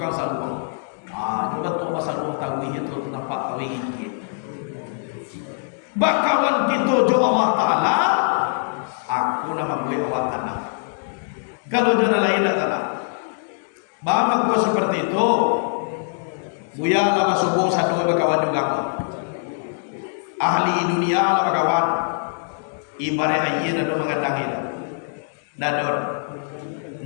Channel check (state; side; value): silent; right; digital silence